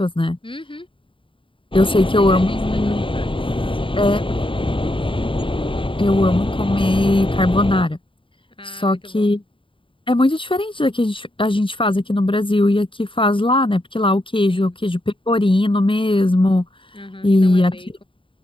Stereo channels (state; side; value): late; right; 0.25 ms